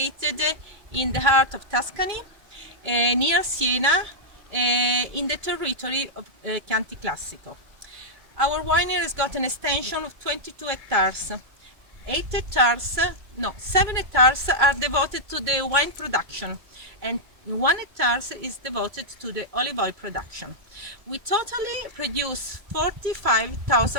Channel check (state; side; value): late; left; 2.2 ms